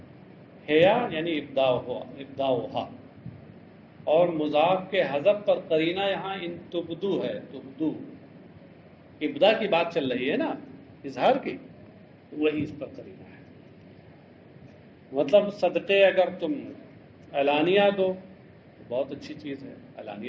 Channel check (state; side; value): identical; both; correlation 1.00